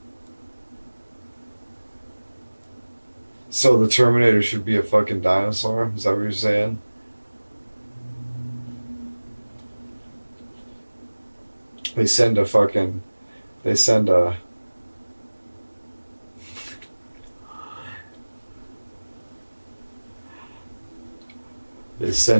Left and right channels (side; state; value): both; inverted; correlation -1.00